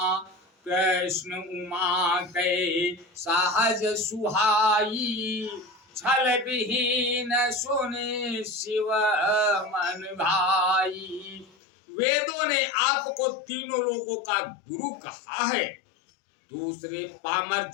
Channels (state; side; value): drops out; right; at 11.6 s